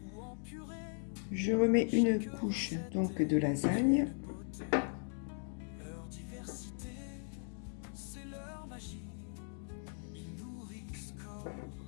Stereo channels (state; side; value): silent; right; 52 dB below the other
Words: ou en purée, Je remets une couche donc de lasagne. leur diversité, c'est leur magie. Ils nourrissent corps